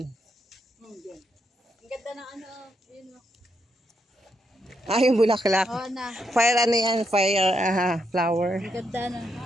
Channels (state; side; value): normal; both; correlation 0.80